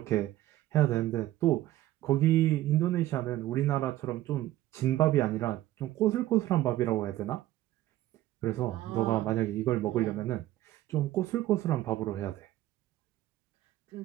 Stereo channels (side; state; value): left; quieter; 15.0 dB